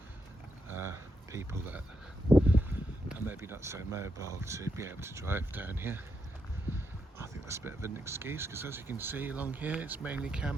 people that are maybe not so mobile to be able to drive down here. I think that's a bit of an excuse, because as you can see along here, it's mainly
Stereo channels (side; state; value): both; normal; correlation 0.81